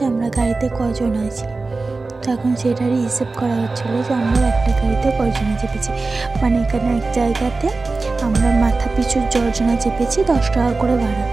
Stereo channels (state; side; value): quieter; left; 3.7 dB